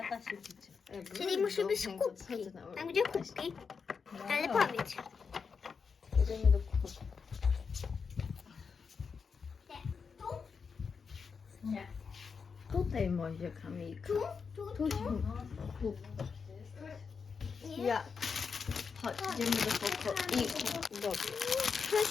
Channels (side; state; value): right; quieter; 5.6 dB